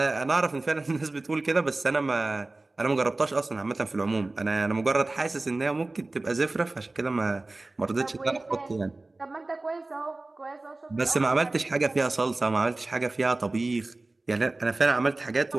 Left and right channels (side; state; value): left; quieter; 3.1 dB